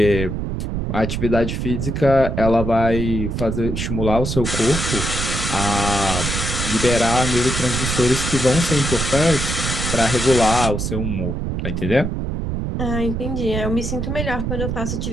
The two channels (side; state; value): right; noise; rumble, 2 dB below the sound